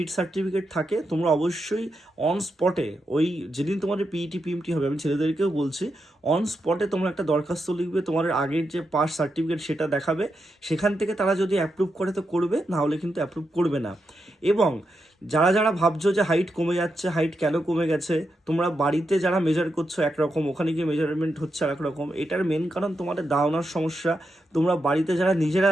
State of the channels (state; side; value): normal; both; correlation 0.85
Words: সার্টিফিকেট থাকে, তোমরা অবশ্যই অন স্পটে, ওই যেদিন তোমাদের পিইটি পিএমটি হবে, আমি ছেলেদেরকেও বলছি, অন স্পটে তোমরা একটা দরখাস্ত লিখবে, তোমাদের আগের যে পাস সার্টিফিকেট সেটা দেখাবে। সেখান থেকে তারা যদি অ্যাপ্রুভ করে তো করবে, না হলে কিন্তু অ্যাপ্রুভ করবে না। এবং যারা যারা ভাবছো যে হাইট কমে যাচ্ছে, হাইট কেন কমে গেছে, তোমরা বাড়িতে যারা মেজার করছো একরকম, ওখানে গিয়ে মেজারমেন্ট হচ্ছে আর একরকম, এটার মেন কারণ তোমাদের দাঁড়ানোর সমস্যা। তোমরা বাড়িতে যারা নিজেরা